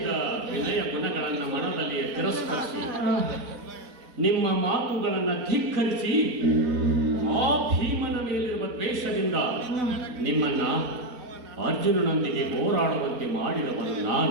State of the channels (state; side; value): late; left; 4.4 ms